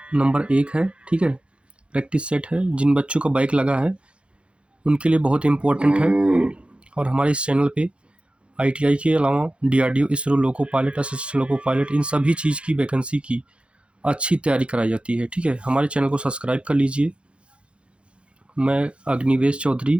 नंबर 1 है, ठीक है। प्रैक्टिस सेट है। जिन बच्चों का बाइक लगा है उनके लिए बहुत इम्पोर्टेंट है। और हमारे इस चैनल पे आईटीआई के अलावा DRDO, ISRO, loco pilot, assistant loco pilot, इन सभी चीज़ की वैकेंसी की अच्छी तैयारी कराई जाती है, ठीक है। हमारे चैनल को सब्सक्राइब कर लीजिए। मैं अग्निवेश चौधरी,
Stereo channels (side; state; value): left; late; 0.058 ms